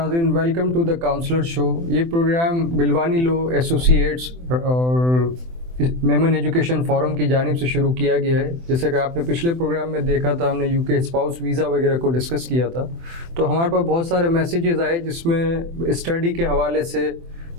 welcome to the counsellor show. ये प्रोग्राम बिलवानी लॉ एसोसिएट्स और मेमन एजुकेशन फोरम की जानिब से शुरू किया गया है। जैसे कि आपने पिछले प्रोग्राम में देखा था, हमने यूके स्पाउस वीज़ा वगैरह को डिस्कस किया था, तो हमारे पास बहुत सारे मैसेजेस आए जिसमें स्टडी के हवाले से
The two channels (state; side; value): late; left; 24 ms